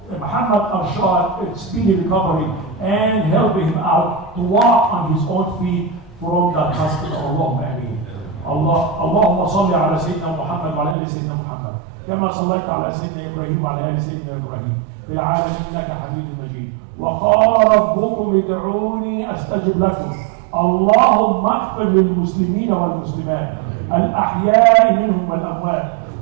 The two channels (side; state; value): left; drops out; at 11.0 s